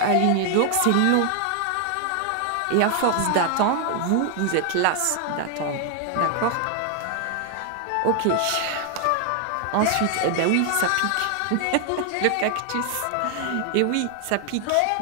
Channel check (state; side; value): different; both; correlation 0.00